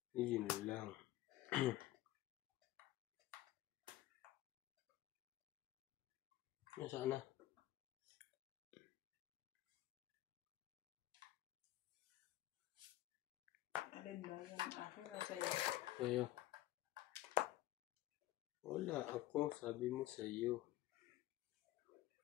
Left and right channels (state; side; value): quieter; right; 15.6 dB